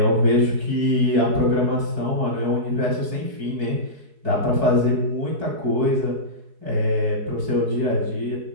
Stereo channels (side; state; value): left; late; 4.6 ms